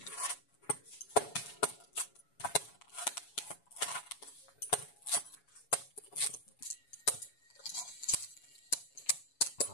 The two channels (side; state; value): right; late; 7.1 ms